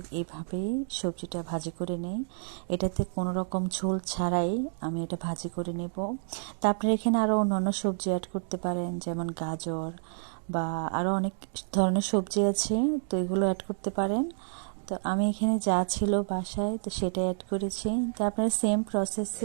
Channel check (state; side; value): silent; left; digital silence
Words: এইভাবেই সবজিটা ভাজি করে নেই। এটাতে কোনো রকম ঝোল ছাড়াই আমি এটা ভাজি করে নেব। তারপরে এখানে আরও অন্যান্য সবজি অ্যাড করতে পারেন, যেমন গাজর বা আরও অনেক ধরনের সবজি আছে, তো এগুলো অ্যাড করতে পারেন। তো আমি এখানে যা ছিল বাসায় তো সেটা অ্যাড করেছি। তো আপনারা সেম